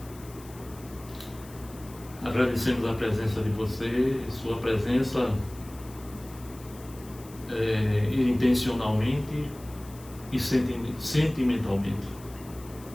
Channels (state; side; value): noise; left; hiss, 21 dB below the sound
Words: Agradecemos a presença de você, sua presença intencionalmente e sentimentalmente.